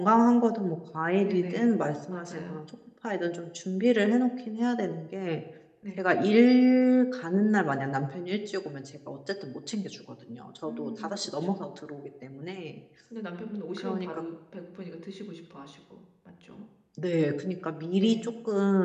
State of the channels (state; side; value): identical; both; correlation 1.00